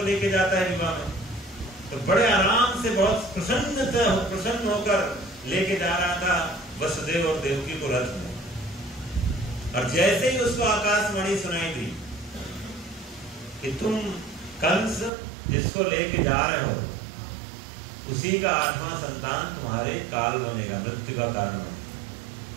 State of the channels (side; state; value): left; drops out; at 15.1 s